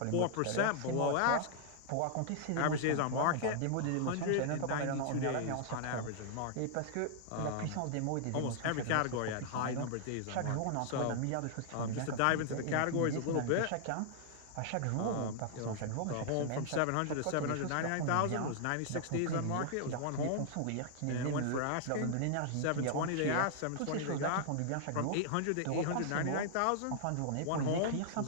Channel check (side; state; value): both; different; correlation -0.01